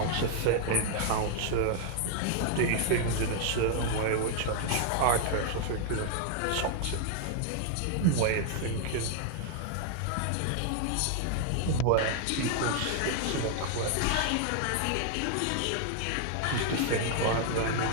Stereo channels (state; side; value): different; both; correlation 0.00